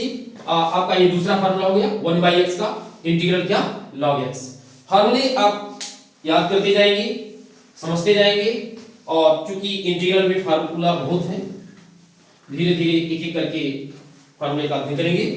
आपका ये दूसरा फार्मूला हो गया 1/x का इंटीग्रल क्या, log x। फार्मूले आप याद करते जाएंगे, समझते जाएंगे, और चूंकि इंटीग्रल में फार्मूला बहुत है, धीरे धीरे एक एक करके फार्मूले का अध्ययन करेंगे।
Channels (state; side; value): identical; both; correlation 1.00